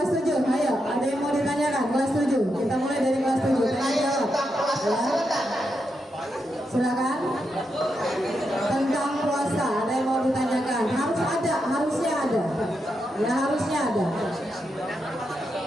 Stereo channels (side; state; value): both; normal; correlation 0.84